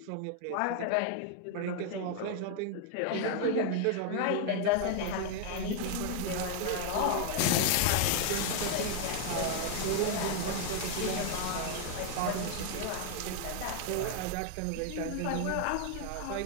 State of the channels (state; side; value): different; both; correlation 0.00